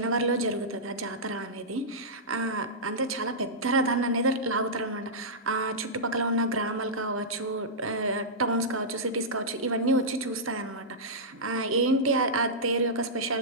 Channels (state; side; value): normal; both; correlation -0.14